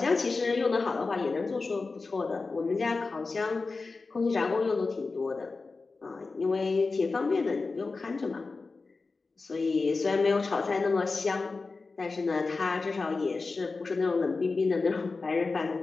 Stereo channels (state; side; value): quieter; right; 4.0 dB